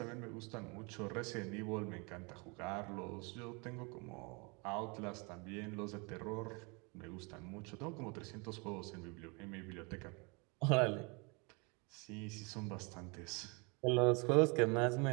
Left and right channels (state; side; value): quieter; left; 30.7 dB